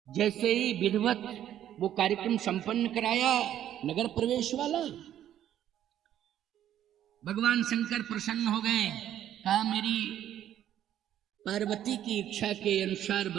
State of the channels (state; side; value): quieter; left; 11.2 dB